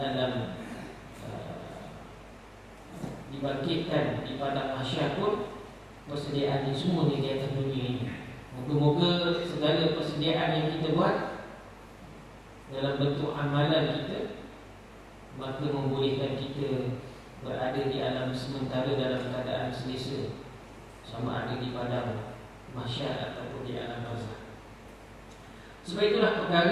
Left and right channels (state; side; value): identical; both; correlation 1.00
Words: dibangkitkan di padang mahsyar pun, persediaan ini semua di atas dunia ini. Moga-moga segala persediaan yang kita buat dalam bentuk amalan kita, maka membolehkan kita berada di alam sementara dalam keadaan selesa, sama ada di padang mahsyar ataupun di alam barzakh. Sebab itulah